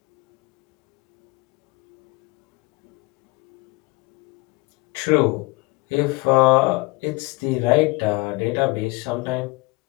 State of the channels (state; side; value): quieter; right; 24.6 dB